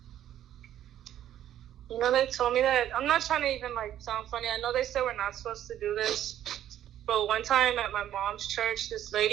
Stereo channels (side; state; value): left; quieter; 11.5 dB